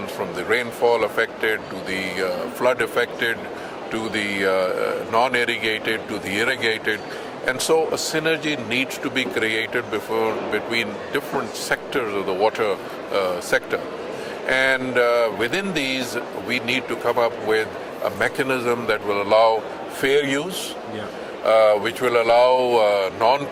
from the rainfall affected to the flood affected, to the non-irrigated to the irrigated. And so a synergy needs to be created between different sectors of the water sector. And within these, we need to come up with a mechanism that will allow fair use, which will allow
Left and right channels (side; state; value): both; identical; correlation 1.00